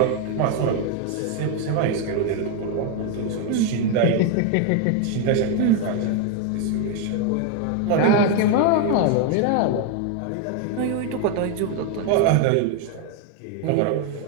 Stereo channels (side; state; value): both; different; correlation 0.01